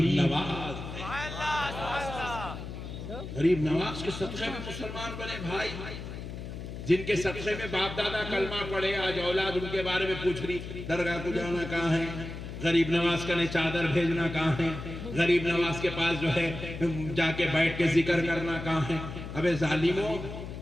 نواز، غریب نواز کے صدقے میں مسلمان بنے بھائی، جن کے صدقے میں باپ دادا کلمہ پڑھے، آج اولاد ان کے بارے میں پوچھ رہی درگاہ کو جانا کہاں ہے، غریب نواز کا چادر بھیجنا کہاں ہے، غریب نواز کے پاس جو ہے جا کے بیٹھ کے ذکر کرنا کہاں ہے۔ ابے ظالموں،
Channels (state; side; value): noise; left; hum, 9 dB below the sound